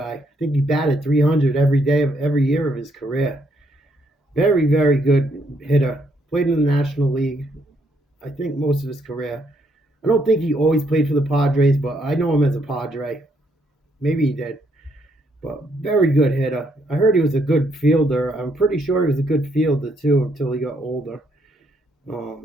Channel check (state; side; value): normal; both; correlation 0.73